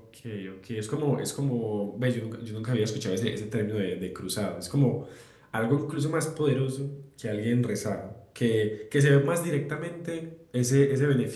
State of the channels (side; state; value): both; identical; correlation 1.00